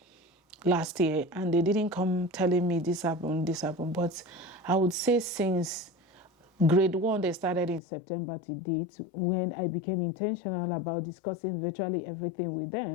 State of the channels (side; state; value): right; drops out; at 7.8 s